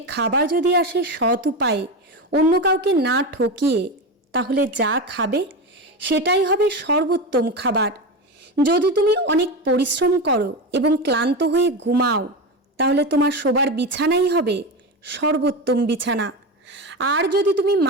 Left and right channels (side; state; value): both; normal; correlation 0.20